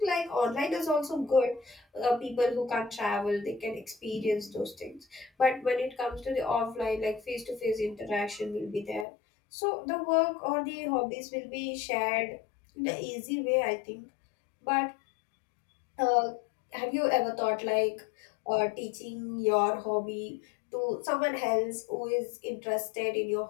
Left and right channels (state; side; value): drops out; right; at 9.1 s